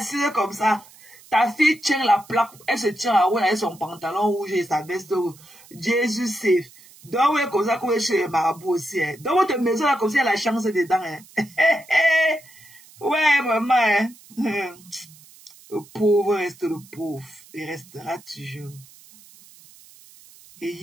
comme ça. Ta fille tient la plaque, elle se tient à haut avec son pantalon rouge et sa veste rouge. Jésus save. Donc, oui, comme ça, qu'on est chez le marabout aussi. Hein. Dans votre maison, là, comme si elle a la chance dedans. Hein. Ouais, maman. Hein. Le pauvre reste le pauvre. Il restera toujours. Et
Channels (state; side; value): noise; right; hiss, 24 dB below the sound